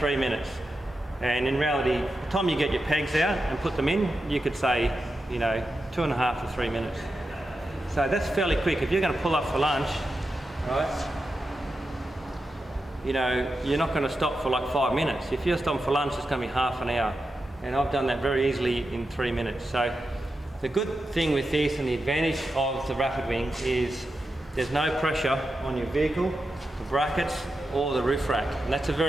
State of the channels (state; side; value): normal; both; correlation 0.89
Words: minutes. And in reality, by the time you get your pegs out and put them in, you could say, you know, 2.5 to 3 minutes. So that's fairly quick. If you're going to pull up for lunch, right, you know, you're not going to stop for like 5 minutes. If you're stopping for lunch, it's going to be half an hour. And I've done that very easily in 3 minutes. So the good thing with this and the advantage of the rapid wing is there's no pressure on your vehicle, the brackets, or the roof rack. And that's a